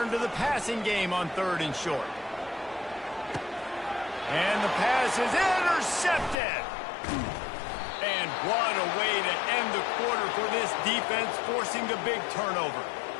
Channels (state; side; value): drops out; right; at 6.4 s